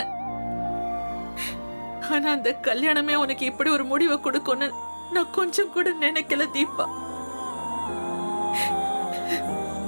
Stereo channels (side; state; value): both; inverted; correlation -1.00